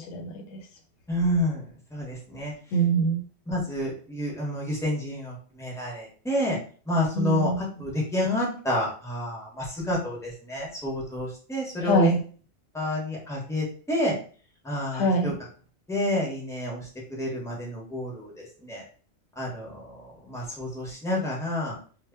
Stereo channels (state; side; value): normal; both; correlation 0.14